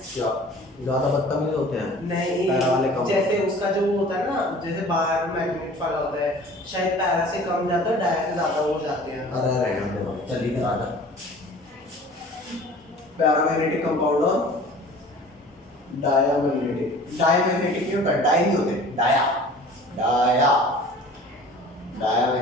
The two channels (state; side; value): normal; both; correlation 0.45